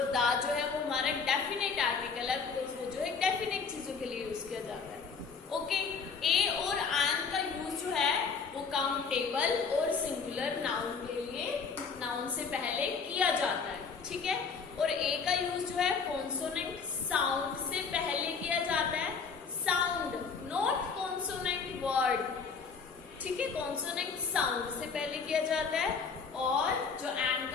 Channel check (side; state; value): right; quieter; 5.4 dB